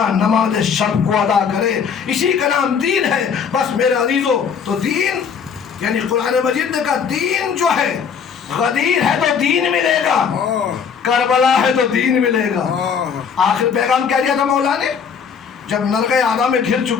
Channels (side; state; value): right; quieter; 6.7 dB